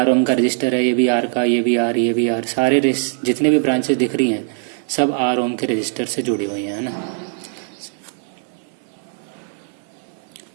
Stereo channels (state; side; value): silent; left; digital silence